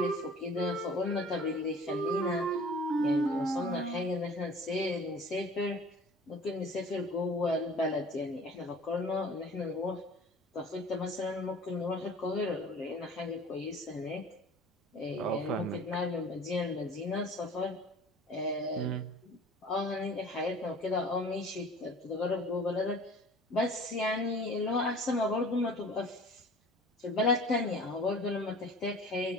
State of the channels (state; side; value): normal; both; correlation 0.45